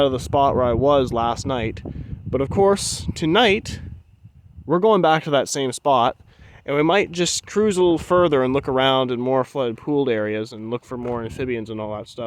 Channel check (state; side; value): identical; both; correlation 1.00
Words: of the spot where I was last night. But of course, tonight we're going back to that same spot, and we might just cruise a little further and look around in more flooded pooled areas and look for more amphibians and all that